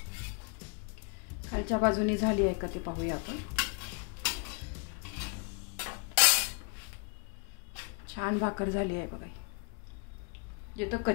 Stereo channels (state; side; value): quieter; right; 35.8 dB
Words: खालच्या बाजूने झाली आहे का ती पाहूया आपण. छान भाकर झाली आहे बघा. जिथं